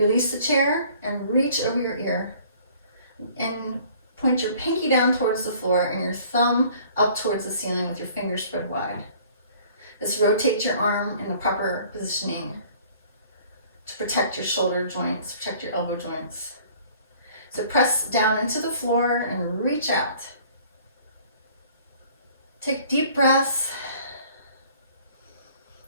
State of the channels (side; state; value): both; inverted; correlation -0.54